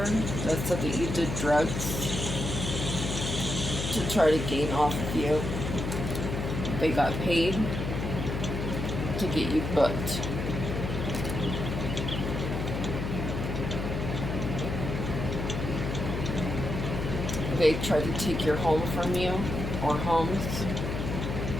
that said that you did drugs to try to gain off of you. They got paid to get you booked. They tried to take your home from you, or homes.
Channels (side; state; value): left; noise; hum, 3 dB below the sound